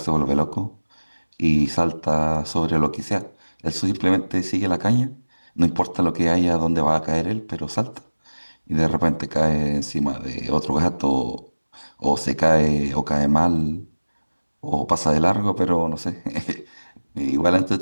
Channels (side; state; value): both; inverted; correlation -1.00